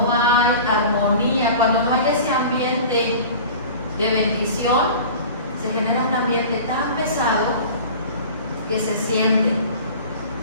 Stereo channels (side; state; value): both; inverted; correlation -0.39